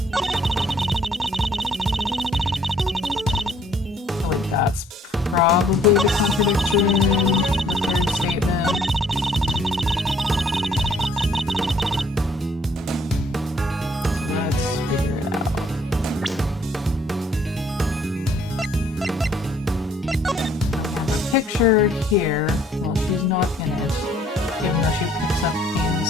Oh wait, that's probably the contradiction, the third statement. Picture here, well, she's not in it, even though she picks up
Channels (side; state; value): both; normal; correlation 0.62